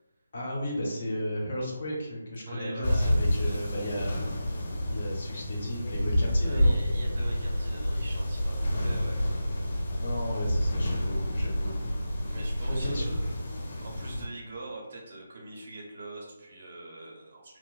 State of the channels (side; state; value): both; inverted; correlation -0.93